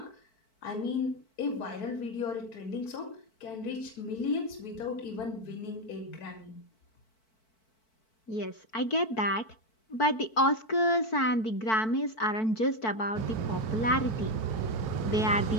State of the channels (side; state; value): right; late; 4.5 ms